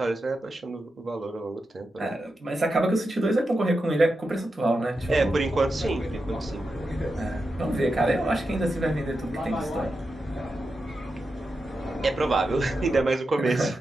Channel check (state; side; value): normal; both; correlation 0.89